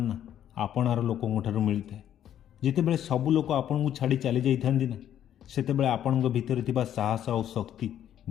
ନା ଆପଣାର ଲୋକଙ୍କ ଠାରୁ ମିଳିଥାଏ। ଯେତେବେଳେ ସବୁ ଲୋକ ଆପଣଙ୍କୁ ଛାଡ଼ି ଚାଲି ଯାଇଥାନ୍ତି ନା, ସେତେବେଳେ ଆପଣଙ୍କ ଭିତରେ ଥିବା ସାହସ ଆଉ ଶକ୍ତି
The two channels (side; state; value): right; quieter; 10.6 dB